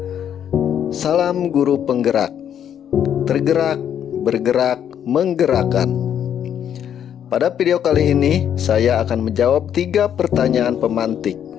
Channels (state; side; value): quieter; right; 9.3 dB